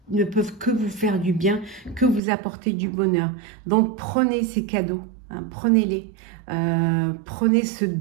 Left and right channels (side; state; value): left; drops out; at 2.2 s